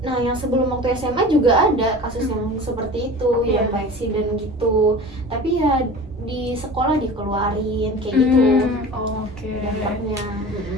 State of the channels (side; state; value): both; normal; correlation 0.37